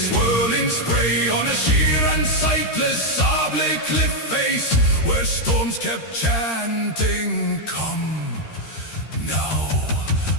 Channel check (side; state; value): right; late; 13 ms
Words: spray, on a sheer and sightless sable cliff face, where storms kept chanting, come now